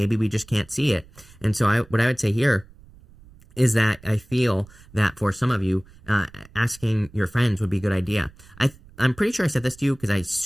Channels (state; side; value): noise; right; rumble, 24 dB below the sound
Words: we just can't see it. And so what I would say here is that I feel that for some of you, asking your friends would be a good idea. I'm pretty sure I said this to you because I